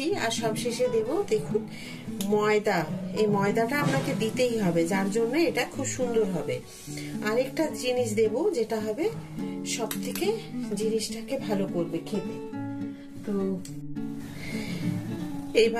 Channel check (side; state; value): both; identical; correlation 1.00